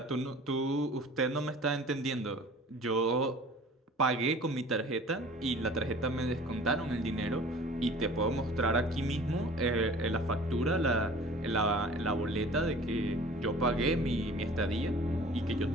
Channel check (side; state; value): both; normal; correlation 0.45